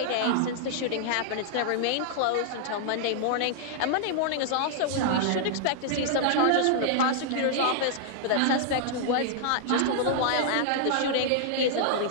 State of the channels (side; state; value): both; different; correlation -0.01